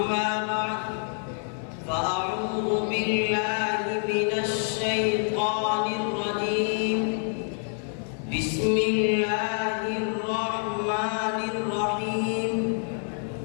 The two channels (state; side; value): silent; right; 56 dB below the other